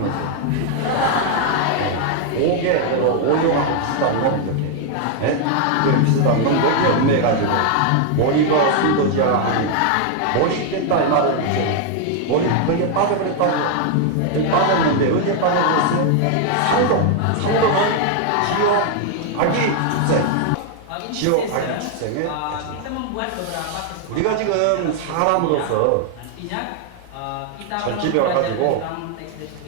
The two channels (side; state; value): both; different; correlation 0.00